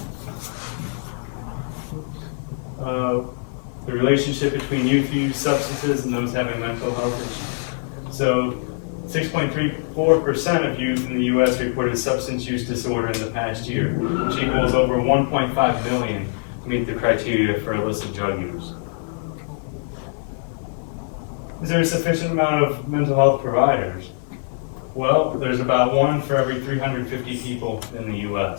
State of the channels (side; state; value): right; silent; digital silence